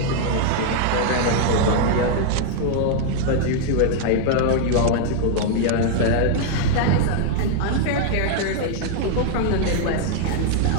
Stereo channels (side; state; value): both; different; correlation 0.00